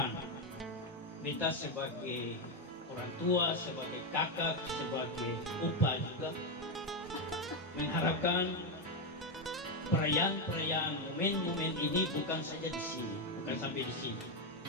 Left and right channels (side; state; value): both; normal; correlation 0.06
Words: kita sebagai orang tua, sebagai kakak, sebagai opa juga mengharapkan perayaan-perayaan momen-momen ini bukan saja di sini, bukan sampai di sini,